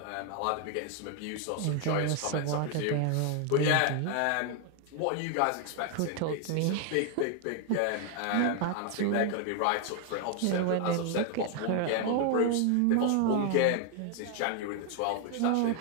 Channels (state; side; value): different; both; correlation 0.00